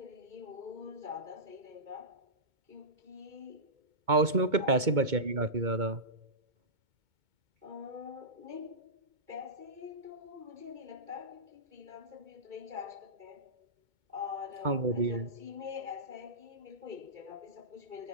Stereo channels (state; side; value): late; left; 2.2 ms